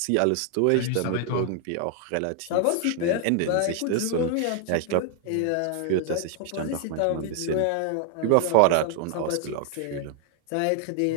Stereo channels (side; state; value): both; different; correlation 0.00